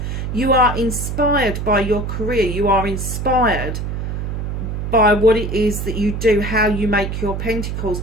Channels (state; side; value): noise; right; hum, 4 dB below the sound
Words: You are inspired by your career. You are inspired by what it is that you do, how you make your pentacles,